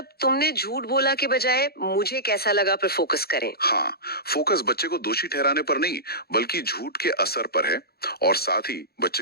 तुमने झूठ बोला के बजाय मुझे कैसा लगा पर फोकस करें। हाँ, फोकस बच्चे को दोषी ठहराने पर नहीं बल्कि झूठ के असर पर है, और साथ ही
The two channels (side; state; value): right; late; 0.46 ms